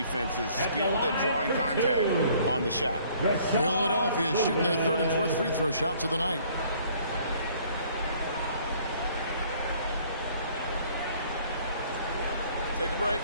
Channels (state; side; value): inverted; both; correlation -0.59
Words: skilled at drawing contact on the shot. Philadelphia shooting their 3rd and 4th free throw shots of the night. Take a break.